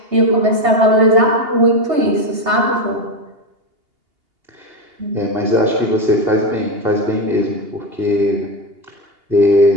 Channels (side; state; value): left; late; 2.8 ms